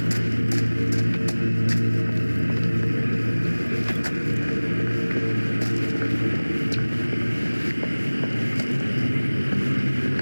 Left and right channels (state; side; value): inverted; both; correlation -1.00